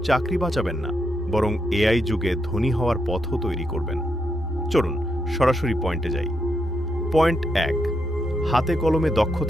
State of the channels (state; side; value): normal; both; correlation 0.81